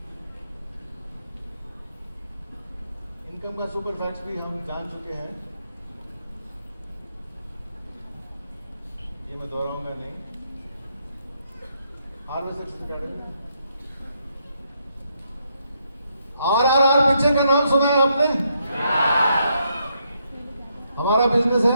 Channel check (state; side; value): inverted; both; correlation -0.77